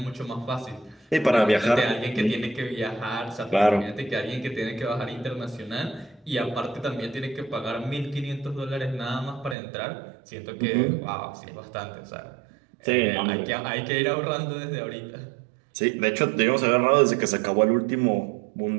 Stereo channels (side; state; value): left; drops out; at 9.6 s